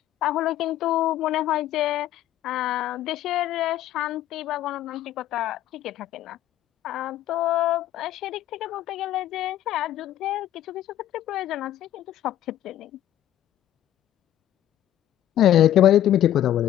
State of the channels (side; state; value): right; quieter; 12.4 dB